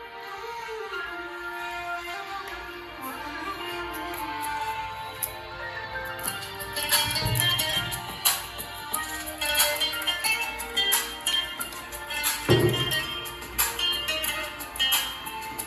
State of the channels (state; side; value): identical; both; correlation 1.00